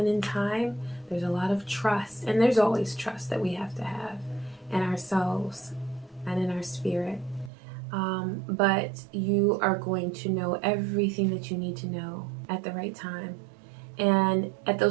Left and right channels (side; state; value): left; drops out; at 7.5 s